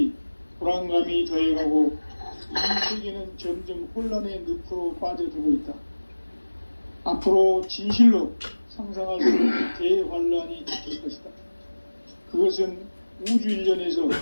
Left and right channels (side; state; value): both; inverted; correlation -1.00